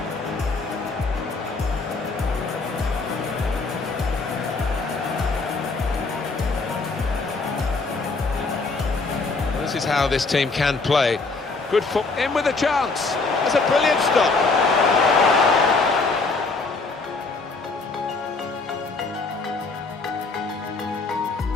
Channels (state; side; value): quieter; right; 3.9 dB